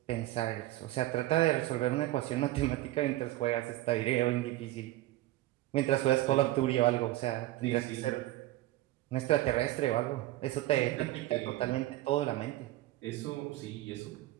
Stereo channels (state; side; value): quieter; left; 16.4 dB